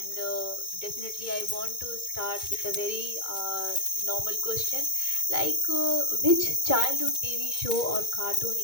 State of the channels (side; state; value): right; late; 2.2 ms